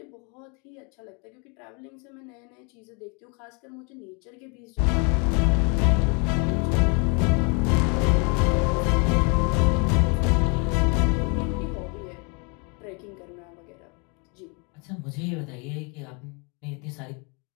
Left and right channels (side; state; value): right; quieter; 34.2 dB